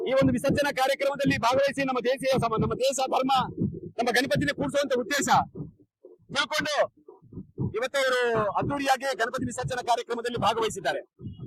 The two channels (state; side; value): identical; both; correlation 1.00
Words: ಈ ಒಂದು ವಿಸರ್ಜನಾ ಕಾರ್ಯಕ್ರಮದಲ್ಲಿ ಭಾಗವಹಿಸಿ ನಮ್ಮ ದೇಶ ಧರ್ಮ ನಮ್ಮ ಗಣಪತಿನ ಕೂಡಿಸುವಂತ ಉದ್ದೇಶ ತಿಳ್ಕೊಂಡು ಇವತ್ತು ಅವರು ಅದ್ದೂರಿಯಾಗಿ ಗಣಪತಿ ವಿಸರ್ಜನಾ ಕಾರ್ಯಕ್ರಮದಲ್ಲಿ ಭಾಗವಹಿಸಿದ್ದಾರೆ.